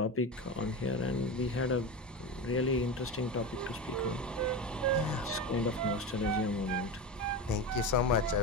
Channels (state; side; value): normal; both; correlation 0.23